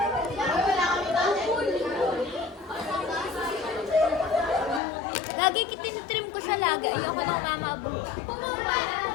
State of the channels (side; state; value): right; drops out; at 4.8 s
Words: Lagi kitinitrim ko sa laga. Ayoko nang mamaabot.